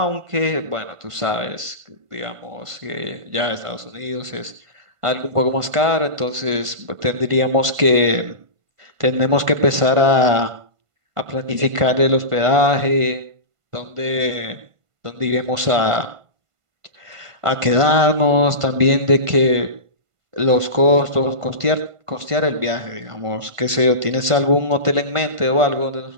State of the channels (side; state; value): left; late; 1.5 ms